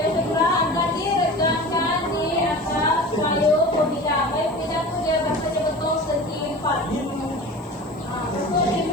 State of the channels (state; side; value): noise; right; hiss, 30 dB below the sound